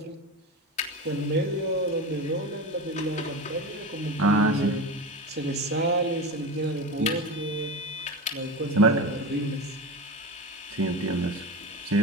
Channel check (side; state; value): both; normal; correlation 0.24